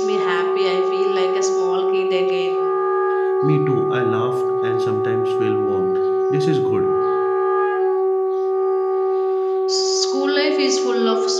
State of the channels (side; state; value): both; identical; correlation 1.00